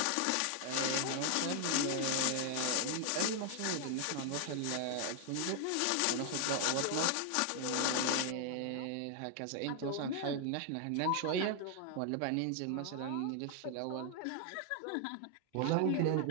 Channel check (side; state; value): both; different; correlation 0.00